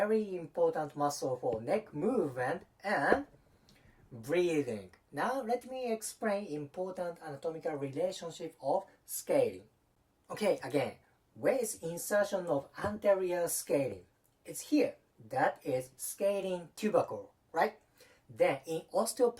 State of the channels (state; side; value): identical; both; correlation 1.00